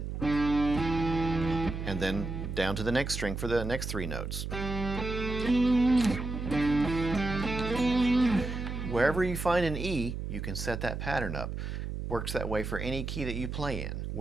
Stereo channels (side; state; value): right; noise; hum, 5 dB below the sound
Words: and then down to the next string for the next 3 notes. Wherever you find an E, you can set that pattern up. Works that way for any key that you play in.